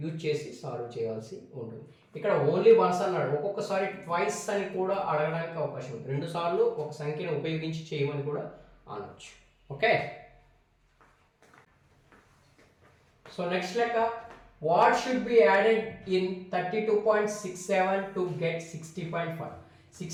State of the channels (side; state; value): both; identical; correlation 1.00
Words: యూజ్ చేసి సాల్వ్ చేయాల్సి ఉంటుంది. ఇక్కడ ఓన్లీ వన్స్ అన్నాడు, ఒక్కొక్కసారి ట్వైస్ అని కూడా అడగడానికి అవకాశం ఉంది. 2 సార్లు ఒక సంఖ్యను ఉపయోగించి చేయమని కూడా అనొచ్చు. ఓకే, సో నెక్స్ట్ లెక్క, what should be added in 32.67 to get 60.5.